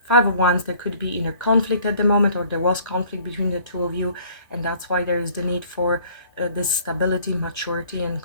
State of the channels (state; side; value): inverted; both; correlation -0.55